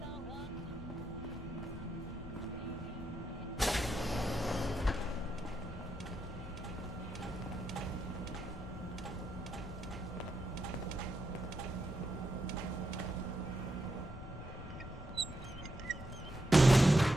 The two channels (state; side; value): normal; both; correlation 0.84